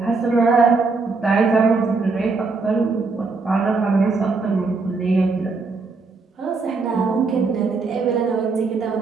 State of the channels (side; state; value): left; quieter; 4.2 dB